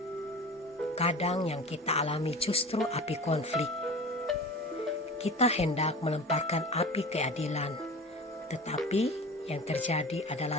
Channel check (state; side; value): normal; both; correlation 0.36